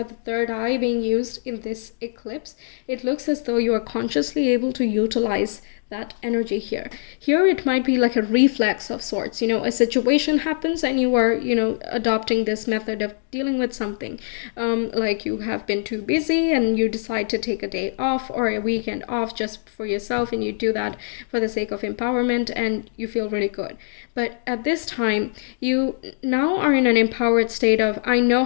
the third eye being used in this eclipse. It looks as though you are consciously able to utilize that energy here. Here it might be like a reflex of sorts, you know, a situation happens and you are, you know, adopting this method of dealing with something. Like you have been too busy and you decide to take a day off or a weekend off just for yourself, and you do that for the sake of empowerment and you feel really good. But at this time, you now are in an empowered state of, I know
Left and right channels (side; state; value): right; silent; 64 dB below the other